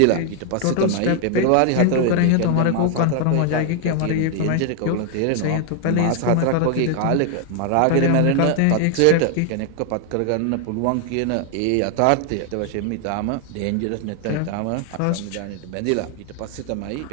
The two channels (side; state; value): both; different; correlation 0.00